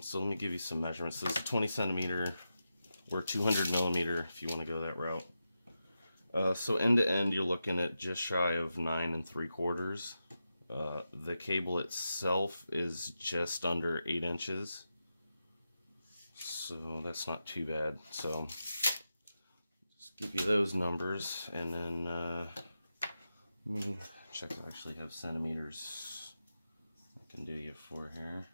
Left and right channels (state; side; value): inverted; both; correlation -0.90